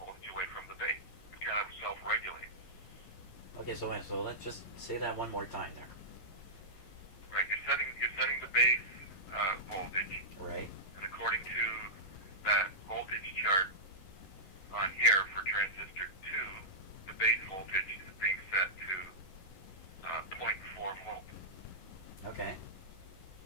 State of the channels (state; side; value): late; right; 11 ms